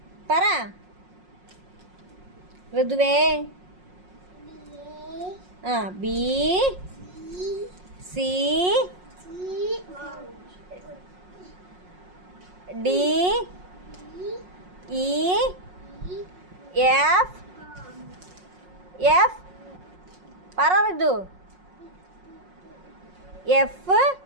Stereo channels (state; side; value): late; left; 5.5 ms